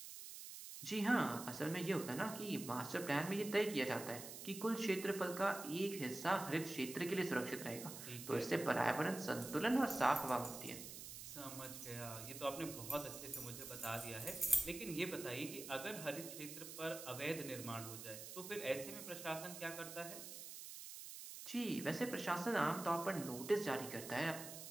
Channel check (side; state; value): right; noise; hiss, 10 dB below the sound